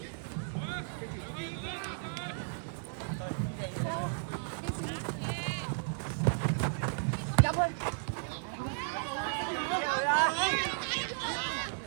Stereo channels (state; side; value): silent; left; 55 dB below the other